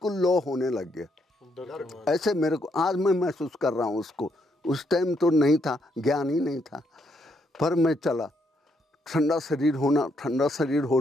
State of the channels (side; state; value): both; normal; correlation 0.75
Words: लो होने लग गया। ऐसे मेरे को आज मैं महसूस कर रहा हूँ उसको। उस टाइम तो नहीं था, ज्ञान ही नहीं था। पर मैं चला, ठंडा शरीर